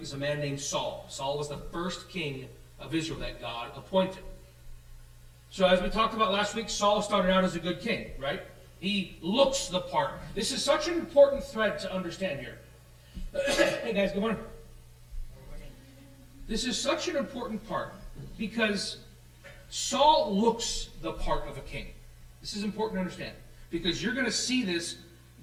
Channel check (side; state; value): both; identical; correlation 1.00